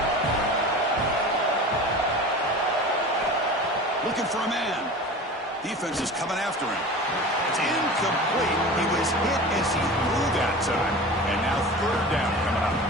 Looking for a man. Defense is coming after him. It's incomplete. He was hit as he threw that time. And now 3rd down coming up.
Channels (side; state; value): both; normal; correlation 0.35